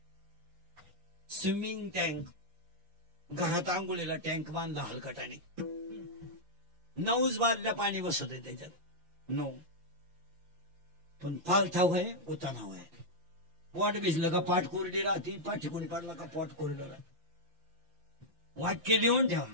स्विमिंग टँक, घरात आंघोळीला टँक बांधला हलकटाने, 9 बादल्या पाणी बसत आहे त्याच्यात. 9 पण पालथाव आहे, उतानाव आहे. पोट भिजलं का पाठ कोरडी राहते, पाठ ठिकून पडला का पोट कोरडं राहते. वाक्य लिहून ठेवा,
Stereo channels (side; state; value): left; late; 5.8 ms